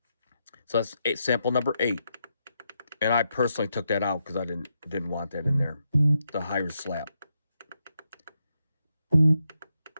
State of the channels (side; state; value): both; inverted; correlation -0.83